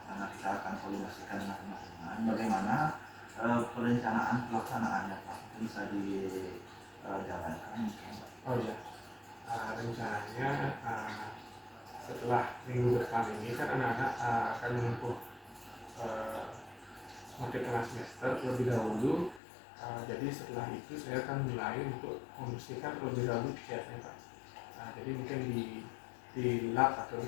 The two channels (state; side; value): drops out; right; at 19.4 s